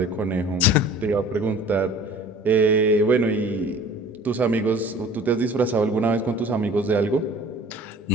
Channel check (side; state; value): both; normal; correlation 0.47